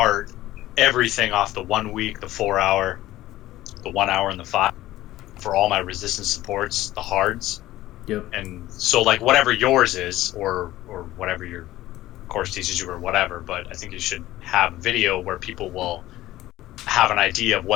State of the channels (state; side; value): quieter; right; 15.7 dB